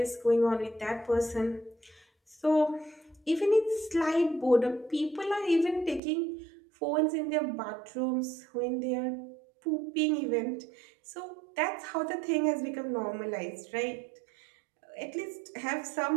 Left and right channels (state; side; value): drops out; left; at 6.0 s